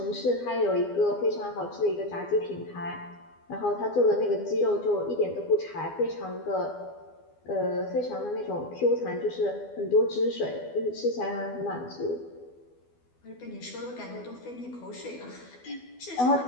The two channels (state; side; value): late; right; 12 ms